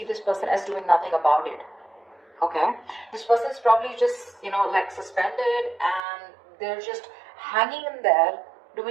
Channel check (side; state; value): left; drops out; at 6.0 s